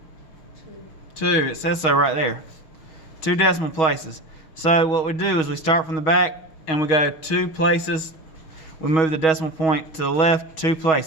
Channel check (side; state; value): right; late; 6.3 ms